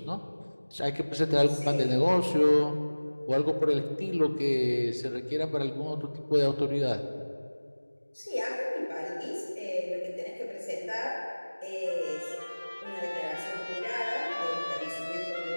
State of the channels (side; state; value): both; inverted; correlation -1.00